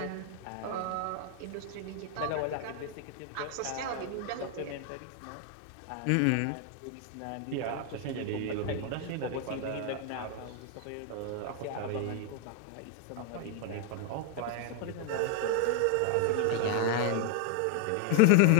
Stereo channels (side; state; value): both; different; correlation 0.00